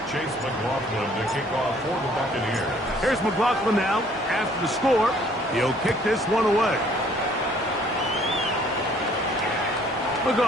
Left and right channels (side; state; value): both; normal; correlation 0.59